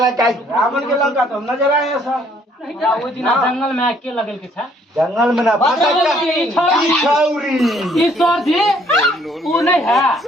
लंका रावण के लंका तो हम नजर आए हैं सर। ओइ दिन जंगल में आके लगल के था जंगल में ना छौरी ईश्वर जी वो नहीं है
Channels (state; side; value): normal; both; correlation 0.64